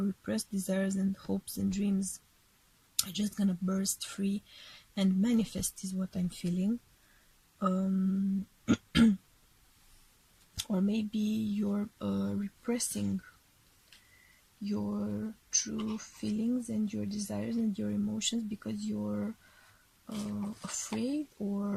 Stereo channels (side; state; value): both; identical; correlation 1.00